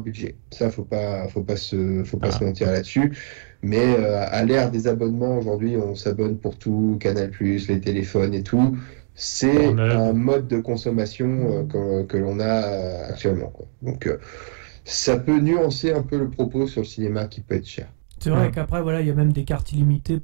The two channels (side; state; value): left; silent; digital silence